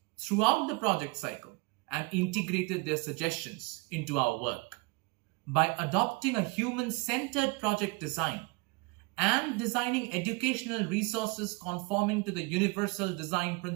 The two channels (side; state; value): left; quieter; 27.5 dB